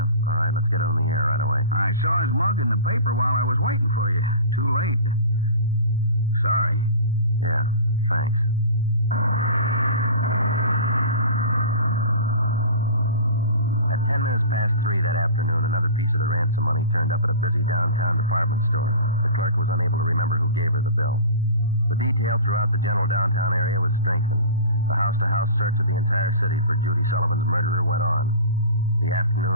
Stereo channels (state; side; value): inverted; both; correlation -0.36